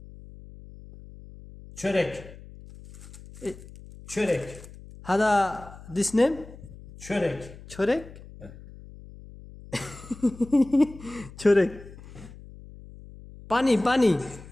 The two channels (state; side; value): noise; left; hum, 18 dB below the sound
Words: Çörek. Çörek. হাদা দিস নেম Çörek. ছোরেক ছোরেক পানি পানি